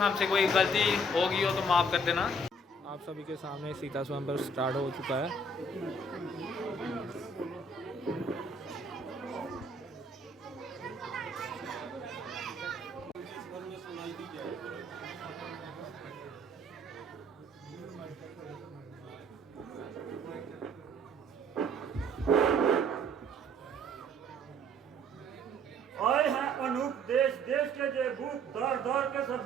हमसे कोई गलती होगी हो तो माफ़ कर देना। आप सभी के सामने सीता स्वयंवर स्टार्ट हो चुका है। आए हैं अनूप देश देश के जे भूप दर दर के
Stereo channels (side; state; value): both; normal; correlation 0.59